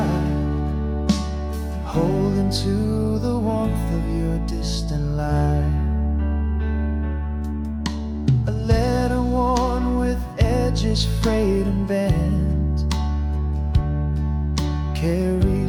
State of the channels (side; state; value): both; identical; correlation 1.00